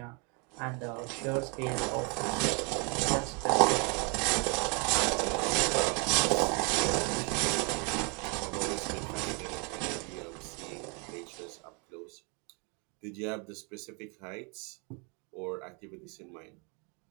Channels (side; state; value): left; quieter; 33.5 dB